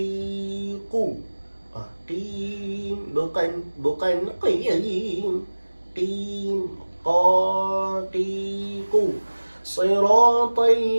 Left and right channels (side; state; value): both; inverted; correlation -1.00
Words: Qim, bukan qiyim. Qim, qaqiqu. Siratal